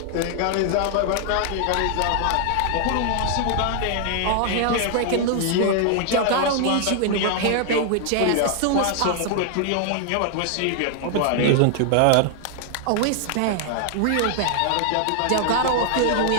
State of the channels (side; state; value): both; different; correlation 0.00